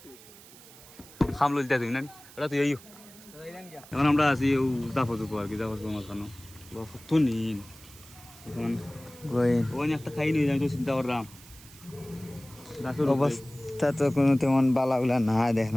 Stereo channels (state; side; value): noise; right; hiss, 20 dB below the sound